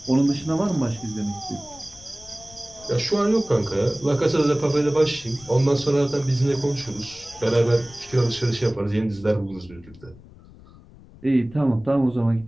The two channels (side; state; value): left; noise; rumble, 22 dB below the sound